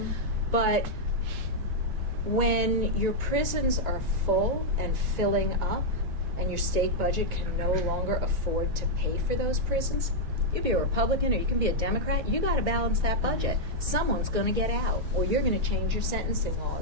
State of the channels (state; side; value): late; left; 9.2 ms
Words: But when your prisons are full and filling up, and your state budget can no longer afford to pay for those prisons, you can be a Republican or you can be a Democrat, you got to balance that budget. Someone's going to get out, or you're going to change your sentencing